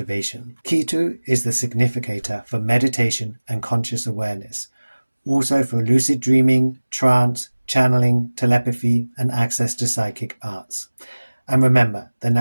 Ketu is the significator for meditation and conscious awareness, also for lucid dreaming, trance, channeling, telepathy, and access to psychic arts. And remember, the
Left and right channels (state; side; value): inverted; both; correlation -1.00